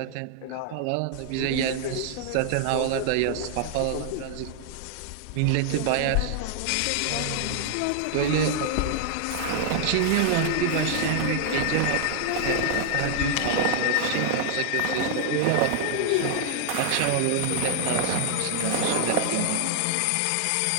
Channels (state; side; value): different; both; correlation 0.00